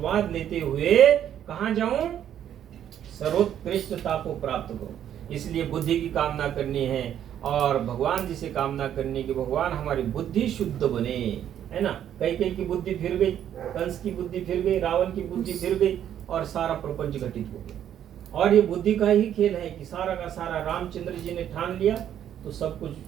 लेते हुए कहाँ जाऊं, सर्वोत्कृष्टता को प्राप्त करूं। इसलिए बुद्धि की कामना करनी है और भगवान जी से कामना करनी कि भगवान हमारी बुद्धि शुद्ध बने, है ना। कई की बुद्धि फिर गई, कंस की बुद्धि फिर गई, रावण की बुद्धि फिर गई और सारा प्रपंच घटित हो गया। और ये बुद्धि का ही खेल है कि सारा का सारा रामचंद्र जी ने ठान लिया तो सब कुछ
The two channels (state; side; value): quieter; left; 10.2 dB